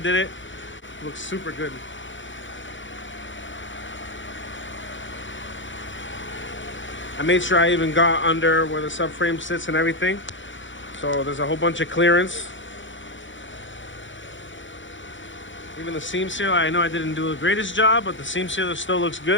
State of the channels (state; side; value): late; right; 0.55 ms